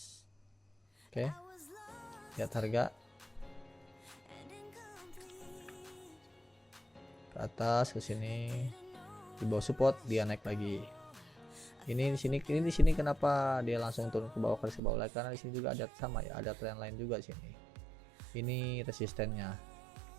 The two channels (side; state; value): left; drops out; at 14.8 s